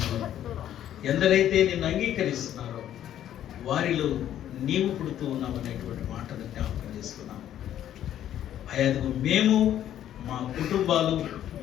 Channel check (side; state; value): right; quieter; 11.2 dB